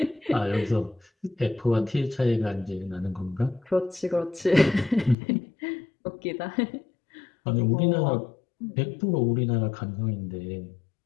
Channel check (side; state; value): right; drops out; at 5.2 s